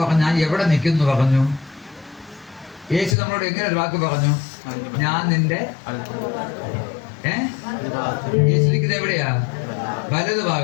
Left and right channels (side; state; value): right; drops out; at 3.2 s